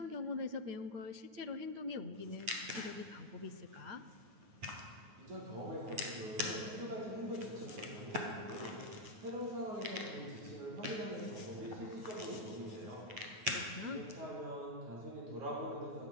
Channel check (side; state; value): left; late; 9.4 ms